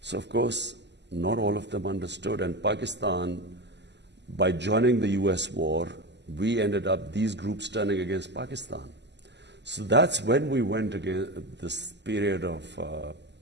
So, of course, not all of them understood. And Pakistan, by joining the US war, we ended up these groups turning against Pakistan. So that's when we went against this period of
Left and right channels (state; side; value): late; left; 0.50 ms